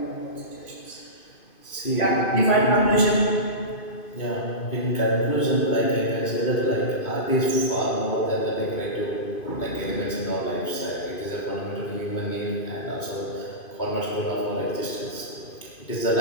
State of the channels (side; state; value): right; late; 2.5 ms